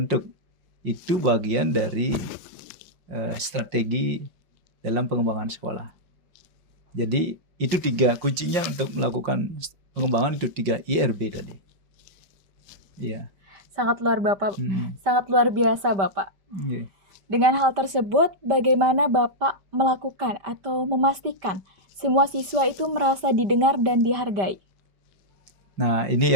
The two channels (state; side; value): late; left; 5.1 ms